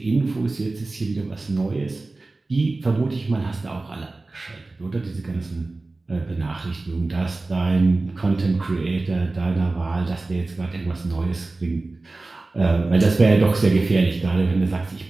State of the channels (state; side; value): quieter; left; 3.3 dB